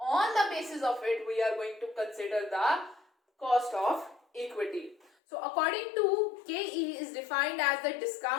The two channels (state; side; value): drops out; right; at 5.1 s